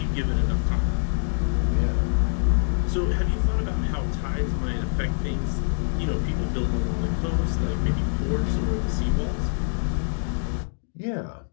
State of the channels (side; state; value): right; silent; digital silence